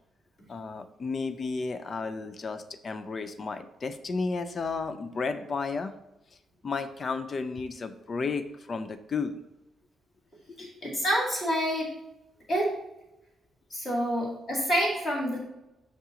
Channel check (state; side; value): normal; both; correlation 0.79